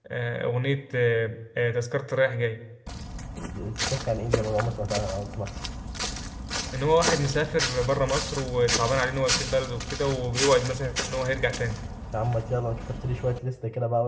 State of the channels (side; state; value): both; identical; correlation 1.00